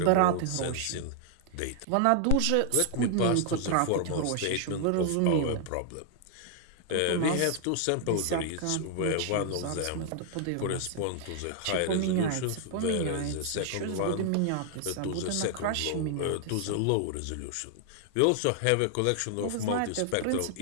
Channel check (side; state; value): both; different; correlation 0.00